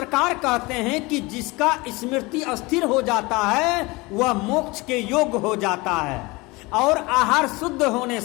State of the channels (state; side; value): quieter; right; 23.9 dB